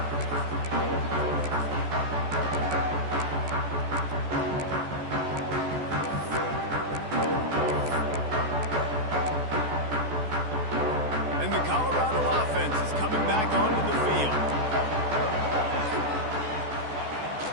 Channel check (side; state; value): left; late; 14 ms